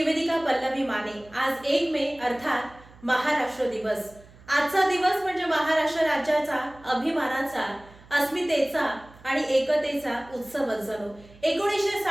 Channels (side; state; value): right; noise; hum, 23 dB below the sound